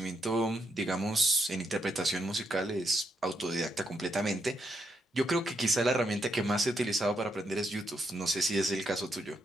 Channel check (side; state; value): both; normal; correlation 0.79